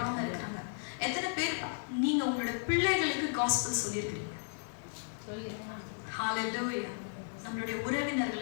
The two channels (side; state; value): right; silent; digital silence